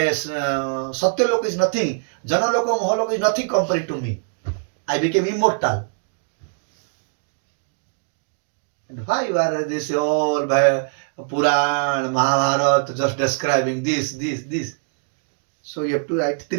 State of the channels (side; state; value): left; silent; digital silence